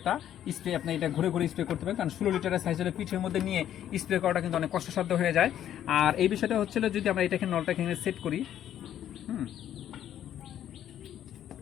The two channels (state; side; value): quieter; right; 10.9 dB